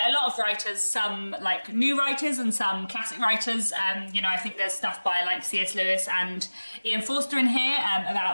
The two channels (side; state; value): both; inverted; correlation -1.00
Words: a lot of writers, some like new writers and some classic writers. You know, I think there's stuff by like C.S. Lewis and Ian Forster in here